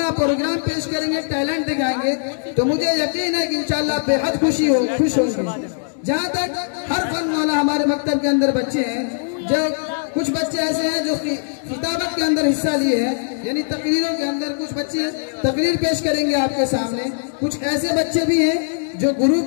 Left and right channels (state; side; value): silent; right; digital silence